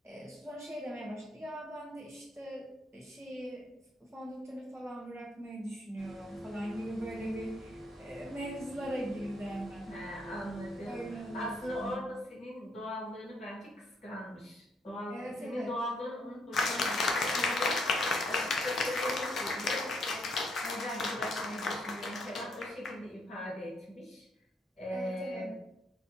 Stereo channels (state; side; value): normal; both; correlation 0.72